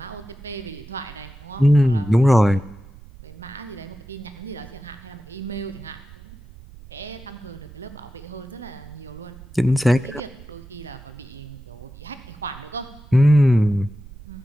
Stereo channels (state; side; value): noise; right; rumble, 19 dB below the sound